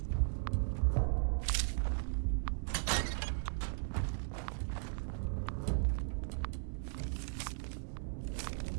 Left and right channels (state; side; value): silent; left; digital silence